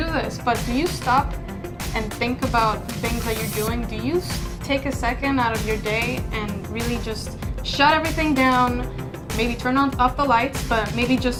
this, but do you stop and think about the things that you're doing? Do you take a second out of your day and really just shut everything down, maybe turn off the lights, but maybe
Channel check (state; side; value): identical; both; correlation 1.00